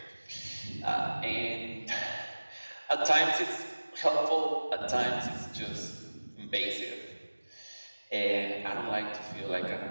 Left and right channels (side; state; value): both; inverted; correlation -1.00